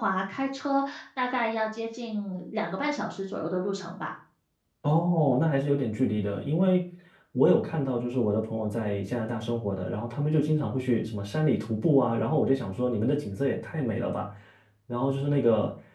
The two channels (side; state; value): both; identical; correlation 1.00